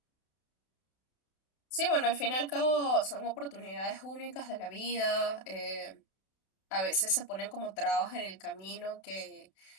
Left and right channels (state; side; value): late; right; 32 ms